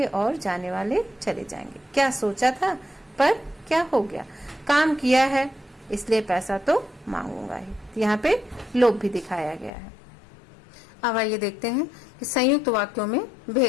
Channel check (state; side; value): drops out; right; at 9.7 s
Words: और जाने वाले चले जाएंगे। क्या सोचा था पर क्या हो गया? काम किया है इसलिए पैसा तो मांगूंगा ही। तो यहाँ पे लोप भी दिखाया गया है। अब आइए देखते हैं कि संयुक्त वाक्यों में